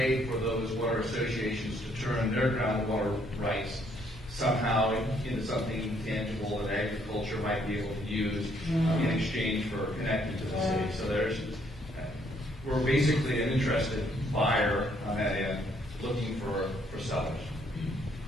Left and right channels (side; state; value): both; normal; correlation 0.68